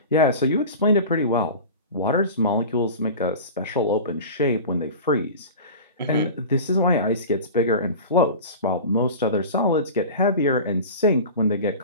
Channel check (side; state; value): both; inverted; correlation -0.33